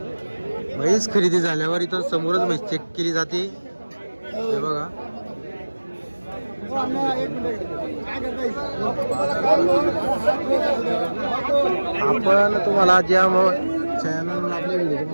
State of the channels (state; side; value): inverted; both; correlation -1.00